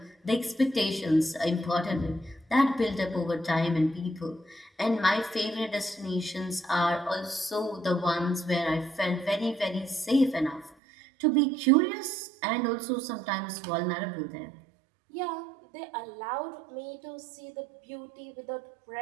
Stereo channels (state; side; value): drops out; left; at 10.8 s